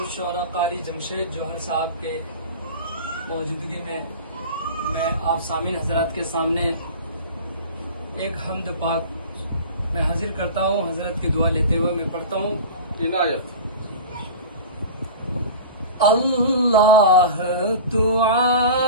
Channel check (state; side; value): inverted; both; correlation -0.34